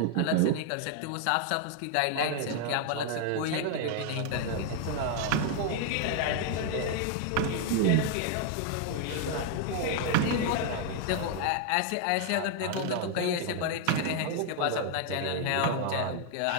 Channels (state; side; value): different; both; correlation 0.00